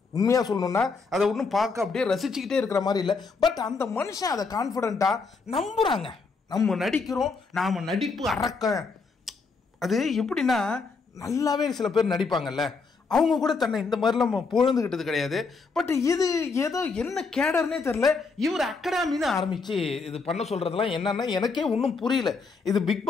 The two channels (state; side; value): quieter; right; 4.5 dB